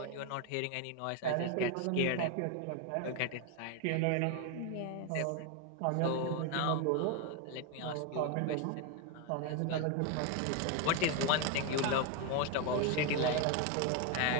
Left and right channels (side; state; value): both; different; correlation 0.01